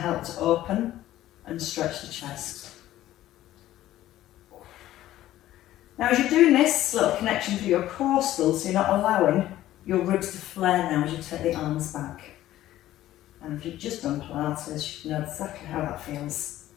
help to open and stretch the chest. Now as you're doing this, little connection to your core still, so you're not allowing your ribs to flare now as you take the arms back. And if you've just done Pilates, you know exactly how that feels.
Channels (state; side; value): quieter; right; 14.0 dB